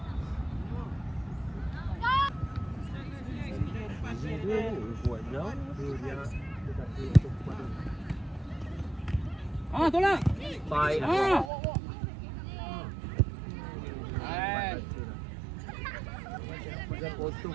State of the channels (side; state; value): left; drops out; at 11.5 s